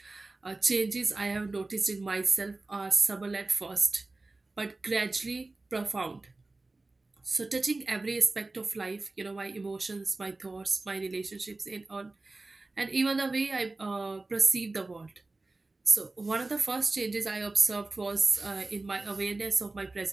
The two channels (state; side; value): quieter; left; 3.2 dB